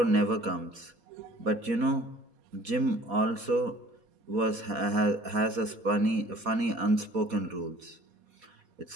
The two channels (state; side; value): late; left; 4.2 ms